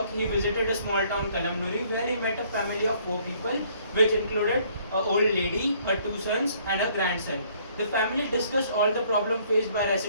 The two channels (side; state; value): both; inverted; correlation -0.62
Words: he visited a small town, Kalamnuri, where he met a family of 4 people, which included an old lady, her 2 sons, and a grandson. The family discussed all the problems faced by